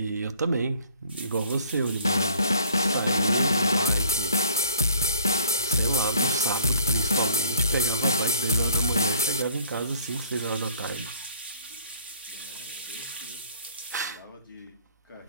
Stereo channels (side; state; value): both; inverted; correlation -0.54